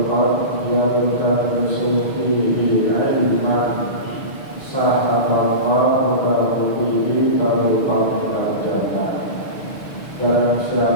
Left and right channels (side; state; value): right; late; 6.5 ms